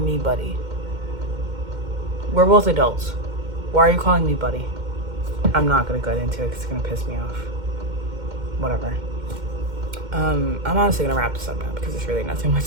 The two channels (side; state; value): left; late; 2.1 ms